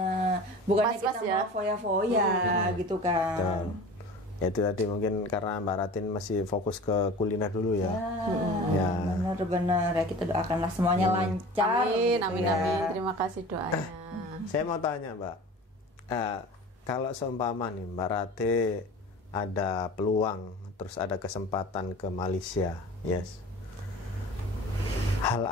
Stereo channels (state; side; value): normal; both; correlation 0.38